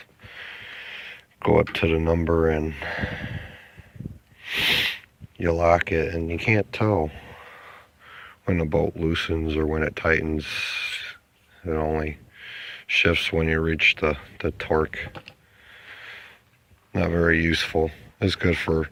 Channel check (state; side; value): identical; both; correlation 1.00